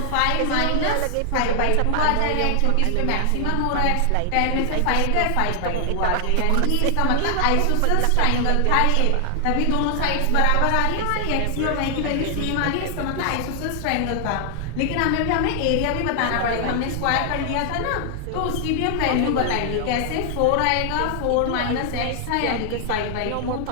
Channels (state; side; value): different; both; correlation 0.00